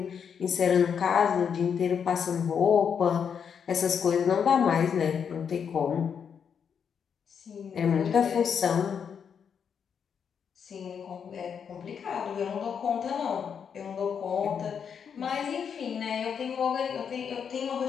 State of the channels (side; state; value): right; quieter; 7.2 dB